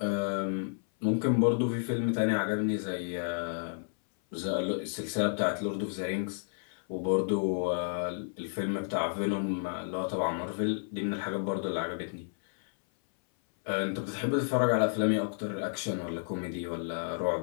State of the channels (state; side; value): silent; right; 57 dB below the other